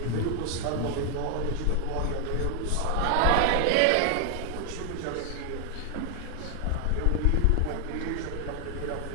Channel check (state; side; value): different; both; correlation 0.00